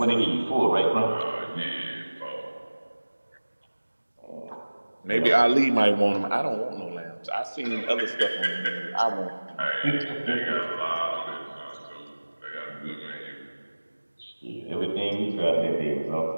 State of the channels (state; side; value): inverted; both; correlation -1.00